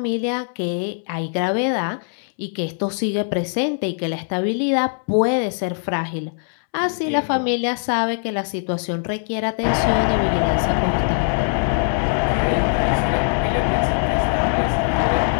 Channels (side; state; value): right; silent; 65 dB below the other